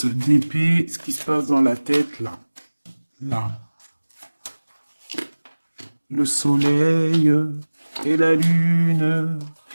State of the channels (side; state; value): both; inverted; correlation -1.00